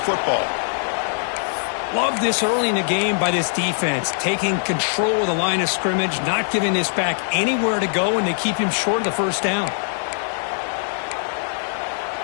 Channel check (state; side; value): silent; right; 64 dB below the other